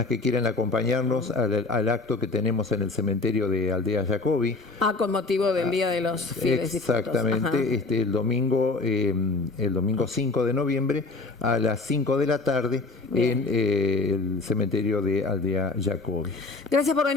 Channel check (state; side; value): quieter; right; 3.5 dB